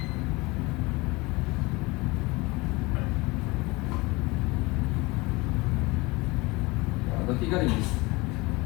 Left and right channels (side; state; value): right; quieter; 23.6 dB